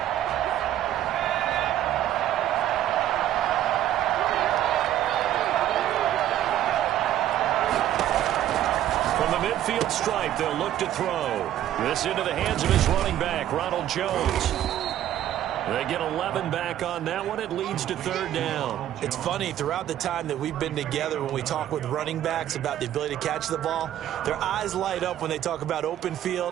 midfield stripe. They'll look to throw. This into the hands of his running back, Ronald Jones. They get 11 back on that one. It leads to third down. It's funny, throughout the time that we've been together, when we talk with running backs about the ability to catch the ball, their eyes light up when they talk about open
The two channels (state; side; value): quieter; left; 12.2 dB